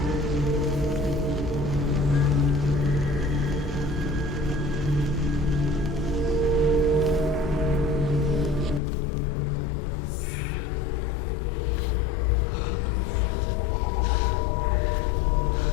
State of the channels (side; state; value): right; drops out; at 8.8 s